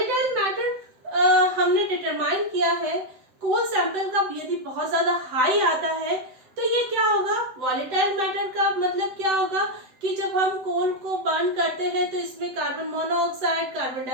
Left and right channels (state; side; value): late; left; 7.8 ms